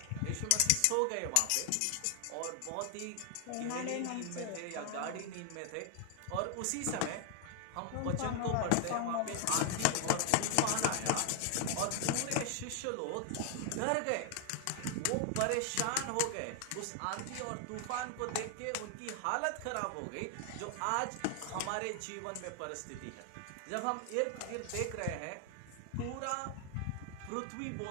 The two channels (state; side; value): different; both; correlation 0.00